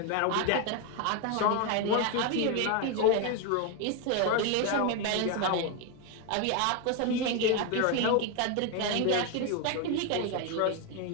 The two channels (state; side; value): different; both; correlation 0.02